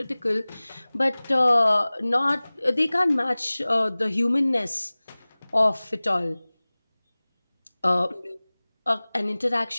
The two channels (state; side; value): inverted; both; correlation -1.00